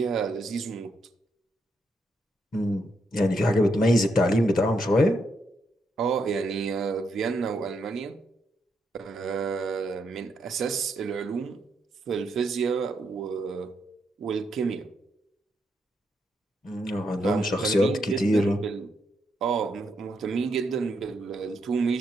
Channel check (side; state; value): both; normal; correlation 0.79